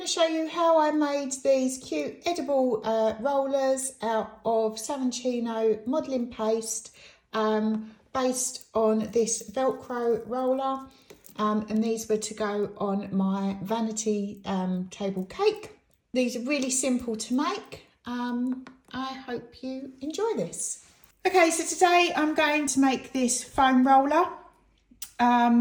to show you how I made these cute edible rollers out of Saracino modelling paste based on this Velcro roller, and these were to go on my vanity table cake. These are really simple to make. I hope you enjoy this. Okay, so today I'm going to make this foam roller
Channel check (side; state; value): both; identical; correlation 1.00